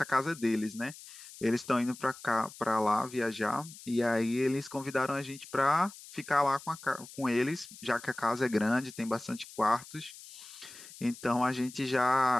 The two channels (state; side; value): noise; left; hiss, 17 dB below the sound